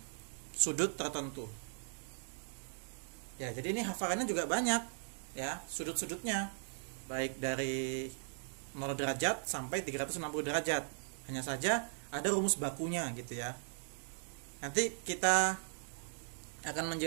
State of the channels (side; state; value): left; silent; digital silence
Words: sudut tertentu. Ya, jadi ini hafalannya juga banyak ya, sudut-sudutnya baik dari 0 derajat sampai 360 derajat. Hanya saja ada rumus bakunya gitu ya. Nanti kita akan